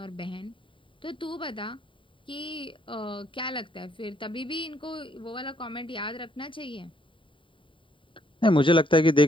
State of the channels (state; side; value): late; right; 0.25 ms